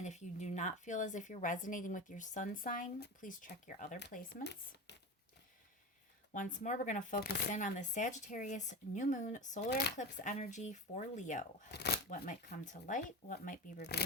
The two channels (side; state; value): both; normal; correlation 0.25